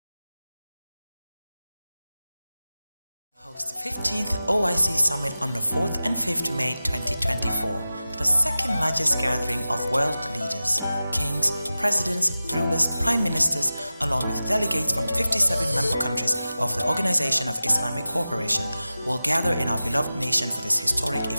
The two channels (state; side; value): inverted; both; correlation -0.95